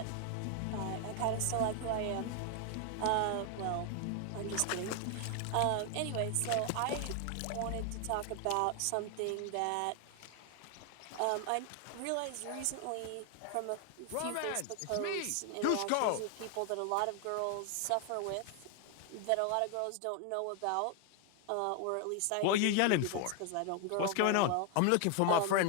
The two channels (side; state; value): both; different; correlation 0.00